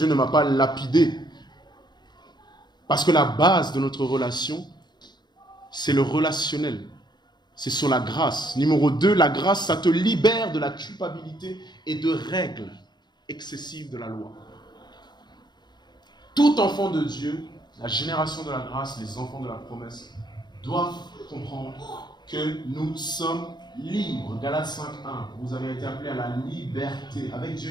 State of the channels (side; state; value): right; late; 0.21 ms